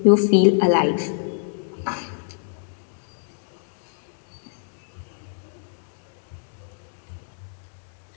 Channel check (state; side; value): silent; right; digital silence